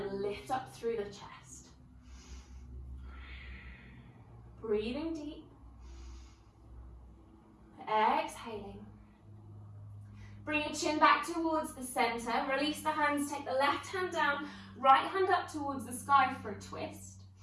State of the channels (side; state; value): both; identical; correlation 1.00